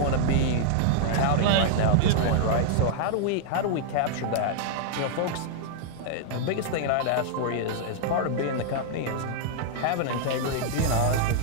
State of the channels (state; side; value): different; both; correlation -0.01